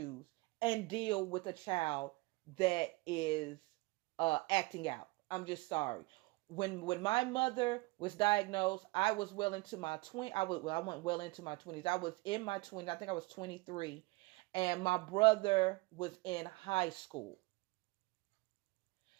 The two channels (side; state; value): left; quieter; 24.2 dB